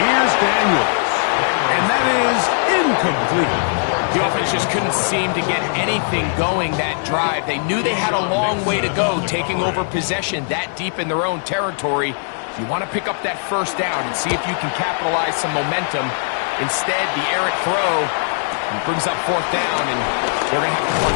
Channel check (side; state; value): right; silent; digital silence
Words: Here's Daniels. And that is incomplete. The offense just couldn't seem to get anything going that drive. They knew they had a long way to go, taking over possession that deep in their own territory. You want to pick up that first down and see if you can capitalize some momentum. Instead, the errant throw brings up fourth down, and they're going to have to